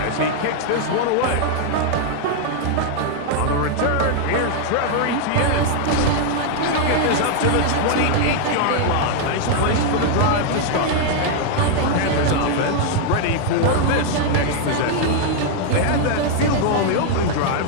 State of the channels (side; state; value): both; different; correlation 0.00